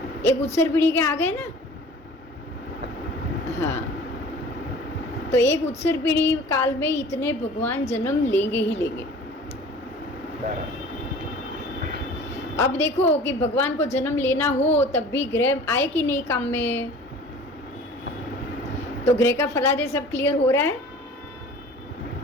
एक उत्सर पीढ़ी के आ गए ना। हाँ तो एक उत्सर पीढ़ी काल में इतने भगवान जन्म लेंगे ही लेंगे। अब देखो कि भगवान को जन्म लेना हो, तब भी ग्रह आए कि नहीं काम में, तो ग्रह का फलादेश सब क्लियर हो रहा है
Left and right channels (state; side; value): normal; both; correlation 0.44